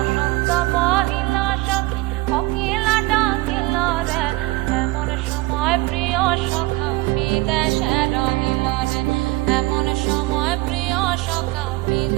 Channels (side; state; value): left; quieter; 20.9 dB